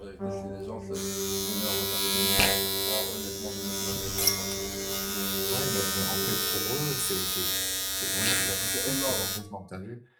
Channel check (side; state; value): both; identical; correlation 1.00